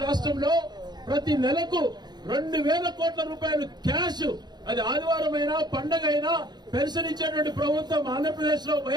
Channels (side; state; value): left; late; 0.20 ms